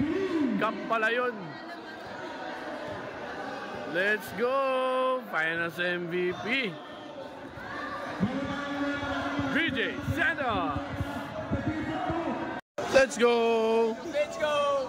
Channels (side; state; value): both; identical; correlation 1.00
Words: Cup pala yun. Let's go! Finals MVP. BJ Santos. Let's go! Let's go!